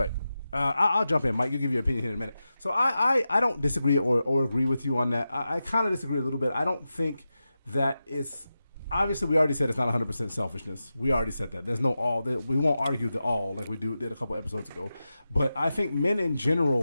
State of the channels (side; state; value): both; inverted; correlation -0.92